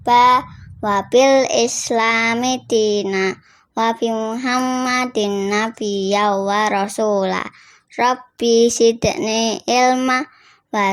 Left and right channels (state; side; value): identical; both; correlation 1.00